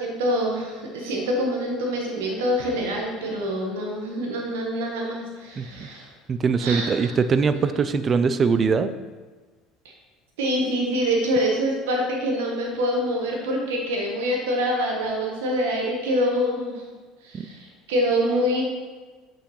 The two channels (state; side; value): normal; both; correlation 0.45